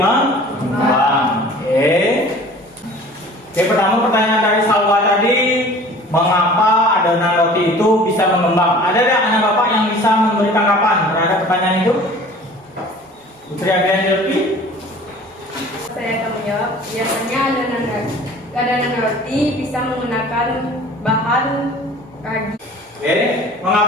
Pertama pertanyaan dari Salwa tadi, mengapa adonan roti itu bisa mengembang? Ada anak bapak yang bisa bisa memberi tanggapan terhadap pertanyaan itu? Putri Abian Delpi? Saya akan menjawab. Biasanya adonan roti bisa menggunakan bahan ragi. Oke,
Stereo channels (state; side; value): normal; both; correlation 0.46